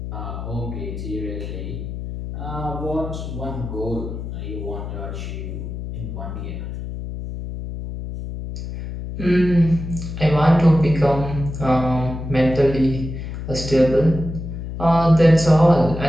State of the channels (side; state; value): left; noise; hum, 7 dB below the sound